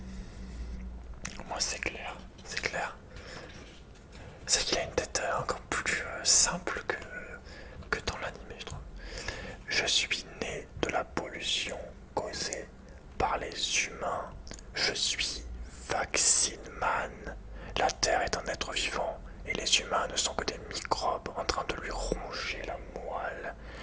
Moi, c'est clair, c'est clair. C'est qu'il a une tête encore plus simple que dans l'anime, je trouve. Je suis né de la pollution causée par les humains. Je suis Vaccine Man. La Terre est un être vivant et les humains ne sont que des microbes en train de lui ronger la moelle.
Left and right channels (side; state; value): both; identical; correlation 1.00